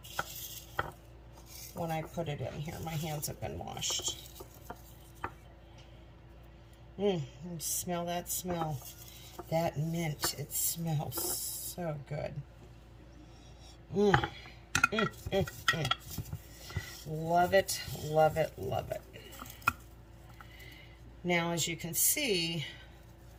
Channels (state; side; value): identical; both; correlation 1.00